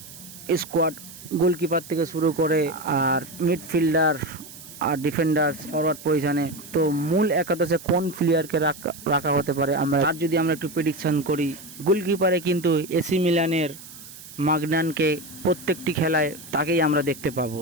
স্কোয়াড, গোলকিপার থেকে শুরু করে আর মিডফিল্ডার আর ডিফেন্ডার ফরওয়ার্ড পজিশনে। তো মূল একাদশে কোন প্লেয়ারকে রাখা হতে পারে তার যদি আমরা একটু প্রেডিকশন করি, গোলকিপারে কিন্তু এসি মিলানের মাগনানকে প্রত্যেকটি খেলায় তাকেই আমরা দেখতে পাবো।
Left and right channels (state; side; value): noise; right; hiss, 17 dB below the sound